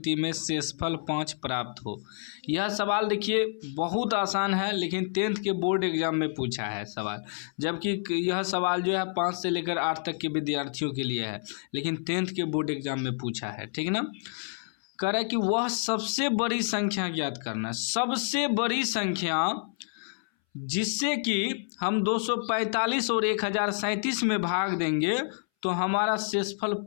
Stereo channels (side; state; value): right; silent; 59 dB below the other